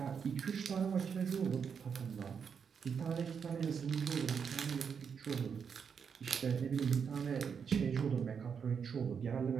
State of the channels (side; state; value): left; quieter; 6.7 dB